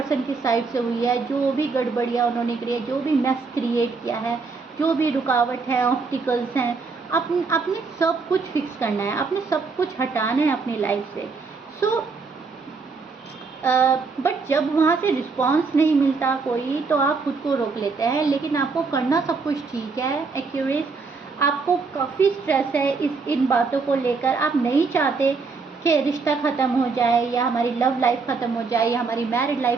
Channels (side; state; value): left; quieter; 4.6 dB